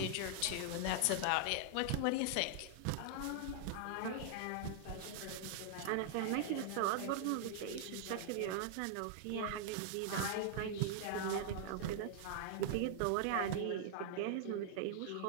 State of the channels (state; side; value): different; both; correlation 0.00